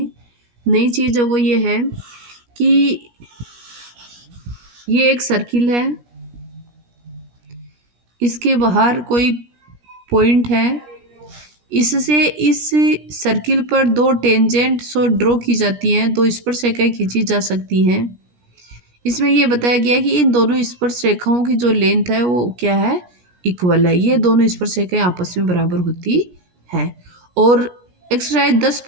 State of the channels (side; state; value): left; late; 17 ms